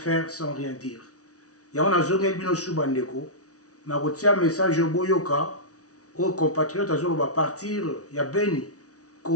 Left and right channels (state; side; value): late; right; 0.67 ms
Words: sans rien dire. Il y a un azongel bino subandeko, na un message au boyoka, aux compatriotes va partir, il y a Béni.